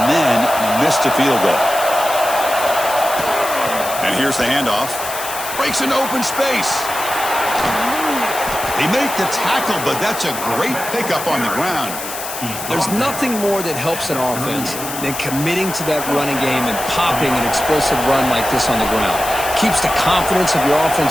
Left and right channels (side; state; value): left; noise; hiss, 8 dB below the sound